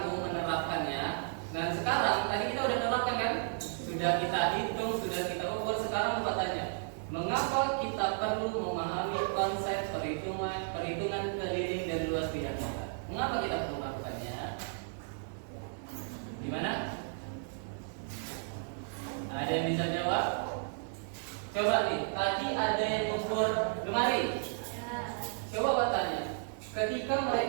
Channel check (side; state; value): left; silent; 55 dB below the other